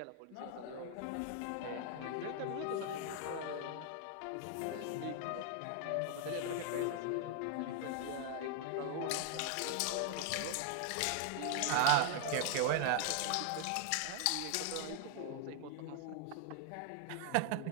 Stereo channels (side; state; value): both; different; correlation 0.00